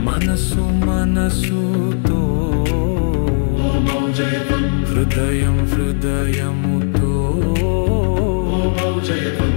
మనసు మనసుతో హృదయం హృదయముతో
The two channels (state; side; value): silent; right; digital silence